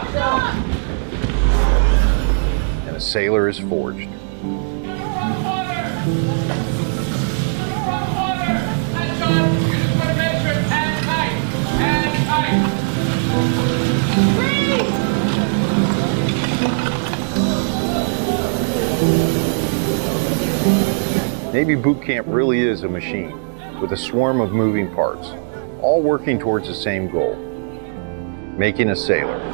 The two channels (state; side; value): silent; left; digital silence